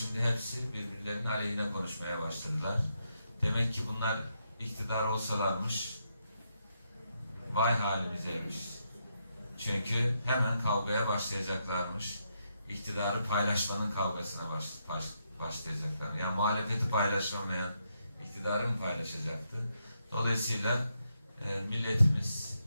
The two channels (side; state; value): both; inverted; correlation -0.80